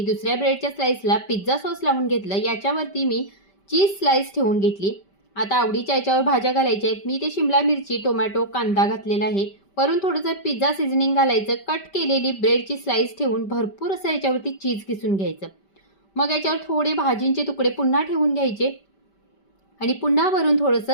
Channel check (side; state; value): right; late; 5.1 ms